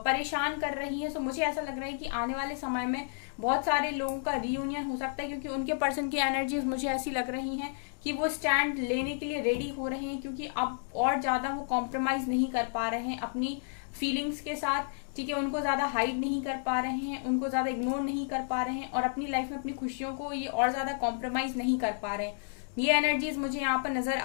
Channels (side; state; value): right; silent; digital silence